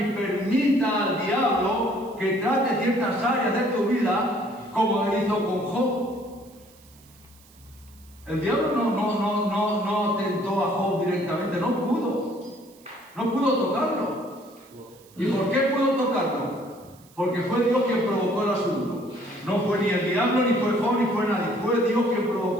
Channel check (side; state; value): right; noise; hiss, 27 dB below the sound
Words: permita al diablo que trate ciertas áreas de tu vida como hizo con Job. El diablo no tentó a Job directamente, no pudo tocarlo. ¿Y por qué pudo tocarlo? Porque fue Dios quien provocó el asunto. No fue ni el diablo, ni fue Job, ni fue nadie, fue Dios quien